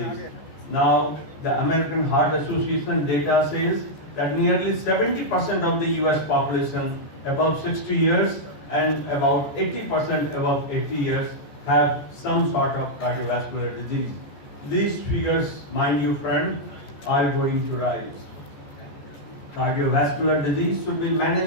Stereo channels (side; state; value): right; late; 14 ms